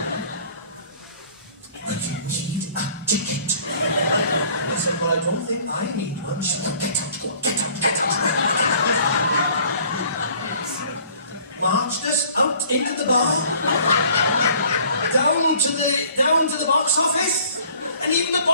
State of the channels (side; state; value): both; inverted; correlation -0.54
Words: but you need a ticket. I said, well, I don't think I need one. She went, get out, go on, get out, get out. Marched us out into the bar, down to the box office, and even the